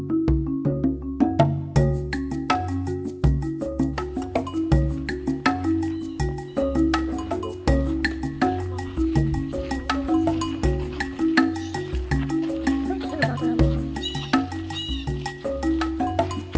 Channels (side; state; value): both; identical; correlation 1.00